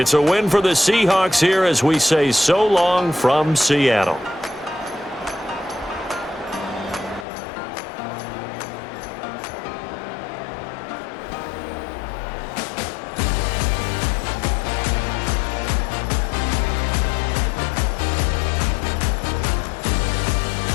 a win for the Seahawks here as we say so long from Seattle.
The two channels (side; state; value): right; drops out; at 7.2 s